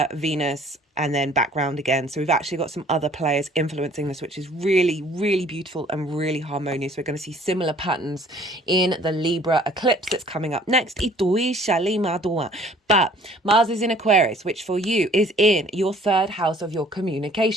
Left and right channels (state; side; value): normal; both; correlation 0.55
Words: Venus, and then background again. So we've actually got some other players influencing this, which is really, really beautiful and really harmonious. We're going to see similar patterns in the Libra eclipse that's coming up next. But Mars is in Aquarius, which for you is in your third house of your